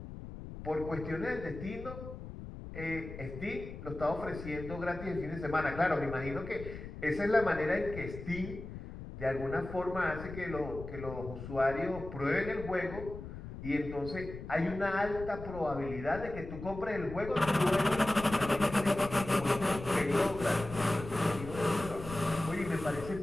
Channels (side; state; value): left; noise; rumble, 11 dB below the sound